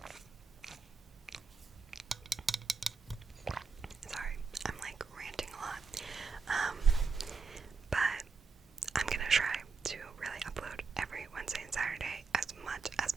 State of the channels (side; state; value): left; quieter; 4.8 dB